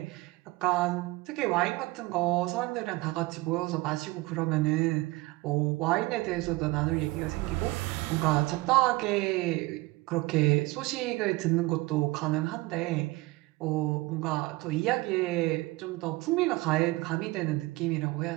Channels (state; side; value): quieter; left; 21.1 dB